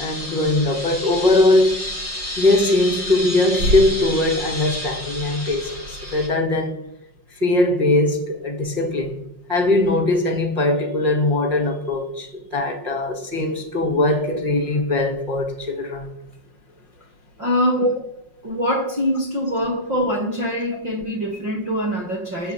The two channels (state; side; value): late; left; 5.5 ms